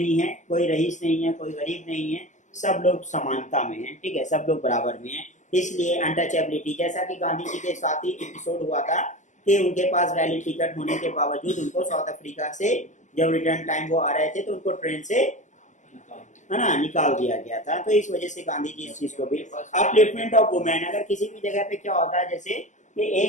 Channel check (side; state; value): right; late; 0.35 ms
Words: है, कोई रईस नहीं है, कोई गरीब नहीं है, सब लोग समानता में हैं, ठीक है, सब लोग बराबर में हैं। इसलिए अनटचेबिलिटी, जैसा कि गांधी जी के साथ ही एपिसोड हुआ था कि उनके पास वैलिड टिकट होने के बावजूद उनको साउथ अफ्रीका से जब रिटर्न टाइम वो आ रहे थे तो उनको ट्रेन से, है ना, निकाल दिया गया था। तो इस वजह से गांधी जी इस चीज को भी, अपलिफ्टमेंट ऑफ वुमेन, अगर किसी भी जगह पे क्या होता है, जैसे कि